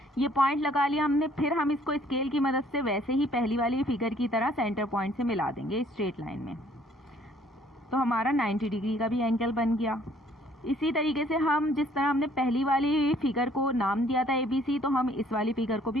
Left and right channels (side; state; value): both; normal; correlation 0.60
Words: ये पॉइंट लगा लिया हमने, फिर हम इसको स्केल की मदद से वैसे ही पहली वाली फिगर की तरह सेंटर पॉइंट से मिला देंगे स्ट्रेट लाइन में। तो हमारा 90 डिग्री का भी एंगल बन गया। इसी तरीके से हम जिस तरह हमने पहली वाली फिगर को नाम दिया था ABC, तो हम इस वाली फिगर को भी